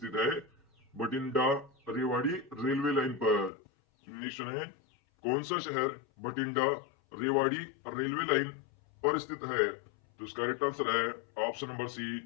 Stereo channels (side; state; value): right; drops out; at 3.5 s